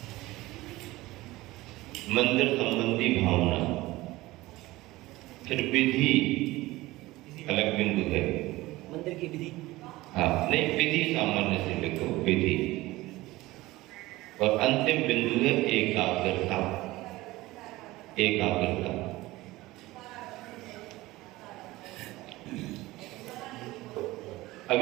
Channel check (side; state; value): left; quieter; 18.8 dB